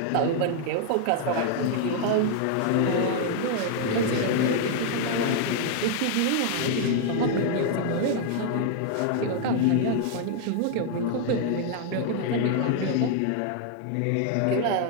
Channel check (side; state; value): both; different; correlation 0.00